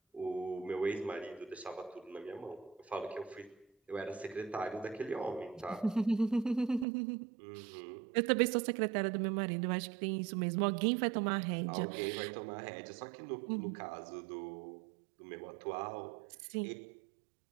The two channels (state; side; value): drops out; left; at 6.9 s